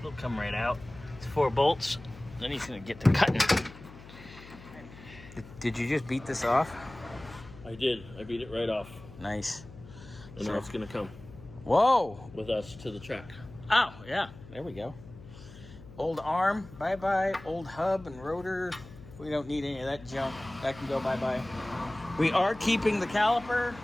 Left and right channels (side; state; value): left; noise; hum, 18 dB below the sound